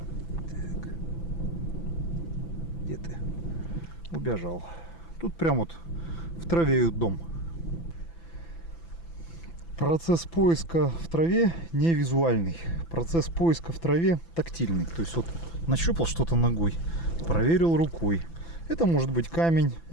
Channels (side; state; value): right; late; 6.0 ms